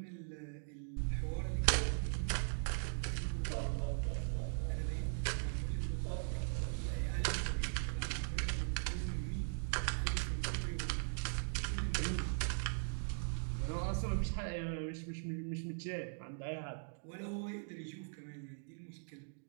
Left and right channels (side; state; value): left; silent; digital silence